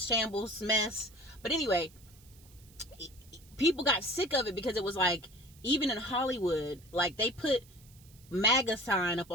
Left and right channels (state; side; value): noise; right; hiss, 26 dB below the sound